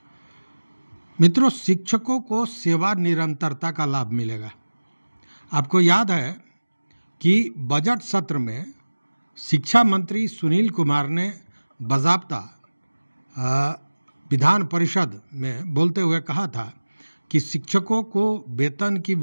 मित्रों, शिक्षकों को सेवा निरंतरता का लाभ मिलेगा। आपको याद है कि बजट सत्र में शिक्षा मंत्री सुनील कुमार ने बाज़ाब्ता विधान परिषद में बोलते हुए कहा था कि शिक्षकों को वेतन की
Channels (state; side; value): inverted; both; correlation -1.00